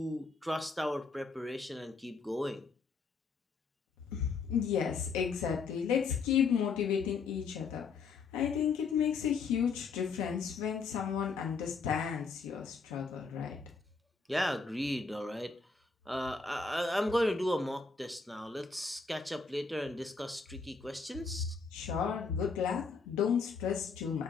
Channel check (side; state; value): right; quieter; 4.9 dB